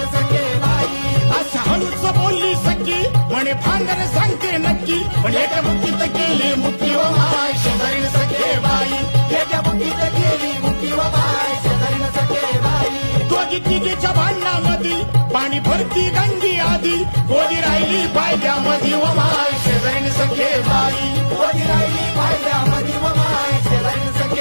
सखे बाई अशा हळूच बोलली सखी म्हणे भांडण सांगते नक्की पण एका मुठीत केली मुठी व माय शेजारीन सखे बाई एका मुठीत केली मुठी व माय शेजारीन सखे बाई दोघी तिघीच्या भांडणामध्ये पाणी भरती गंगी आधी गोदी राहिली पायद्यामध्ये व माय शेजारीन सखे बाई गोदी राहिली पायद्यामध्ये व माय शेजारीन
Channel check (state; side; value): inverted; both; correlation -1.00